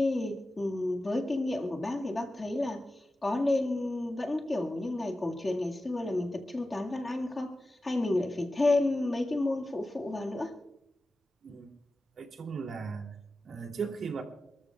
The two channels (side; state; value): both; normal; correlation 0.93